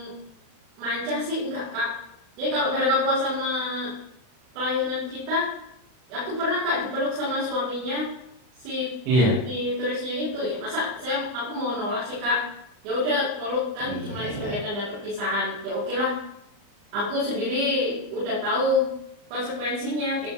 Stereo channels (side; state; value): left; late; 40 ms